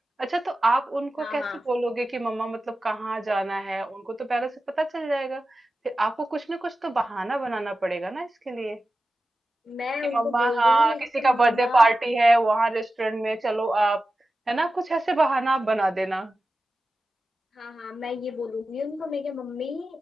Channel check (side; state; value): both; normal; correlation 0.93